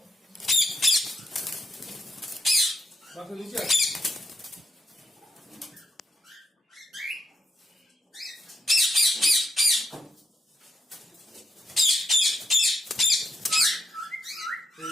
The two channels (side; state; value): both; normal; correlation 0.80